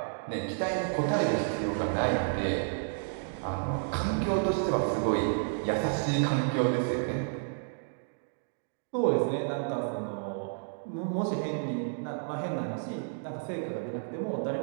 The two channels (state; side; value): silent; left; digital silence